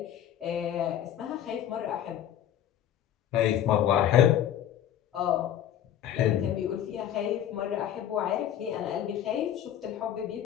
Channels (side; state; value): right; quieter; 10.6 dB